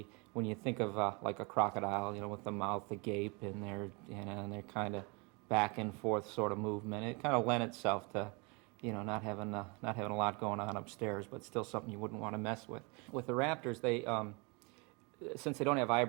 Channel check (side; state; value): left; quieter; 30.1 dB